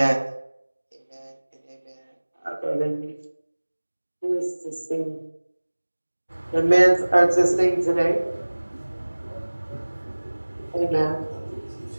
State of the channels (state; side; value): inverted; both; correlation -1.00